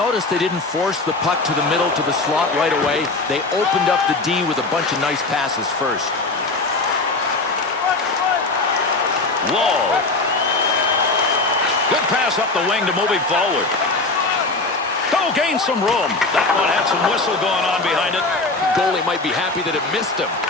they didn't force the puck to the middle to the slot right away. They opened up the D with a bunch of nice passes first. Wall. Good pass up the wing to move him forward. Oh, gain some room. That one had some whistle going on behind it. Goalie might be happy that it missed him.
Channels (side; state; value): right; quieter; 3.4 dB